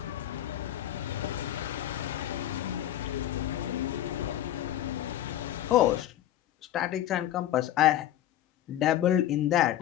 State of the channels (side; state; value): right; quieter; 12.3 dB